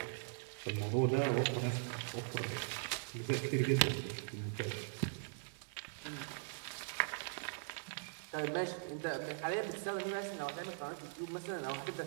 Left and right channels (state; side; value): silent; left; digital silence